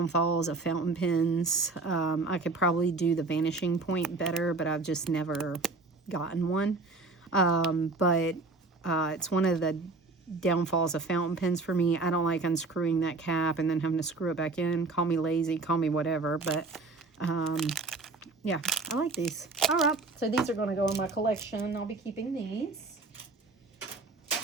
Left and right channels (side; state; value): left; quieter; 3.6 dB